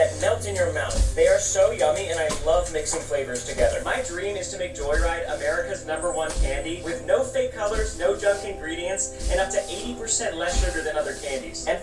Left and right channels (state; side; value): identical; both; correlation 1.00